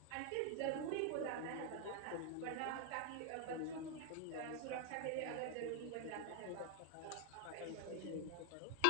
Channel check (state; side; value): different; both; correlation 0.00